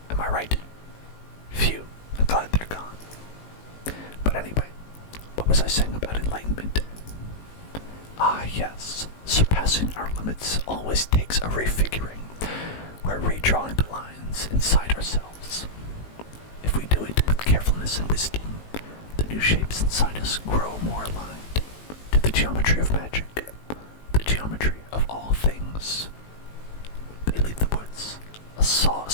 Am I right? Phew, I'm glad they're gone. But anyway, what was I saying about enlightenment? Ah, yes, surpassing our limits always takes a refiguring. We're redrawing the lines inside ourselves. If we do it with carefulness and wisdom, the new shapes inside us grow more aligned to the geometry of magic, the geometry of all things. They leave the woods, a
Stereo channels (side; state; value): right; late; 19 ms